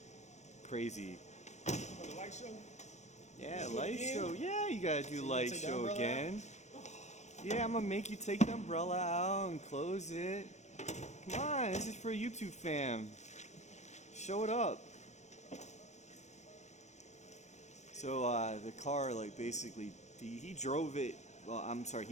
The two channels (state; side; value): late; right; 0.33 ms